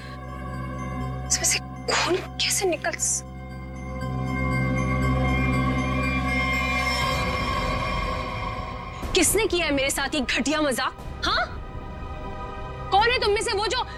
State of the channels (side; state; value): both; identical; correlation 1.00